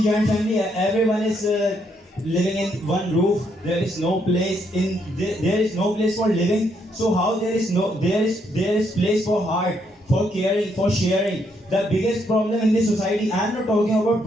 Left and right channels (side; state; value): both; normal; correlation 0.74